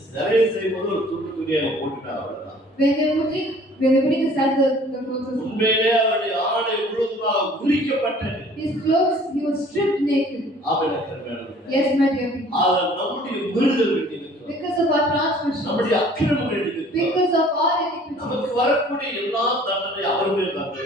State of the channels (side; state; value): both; normal; correlation 0.52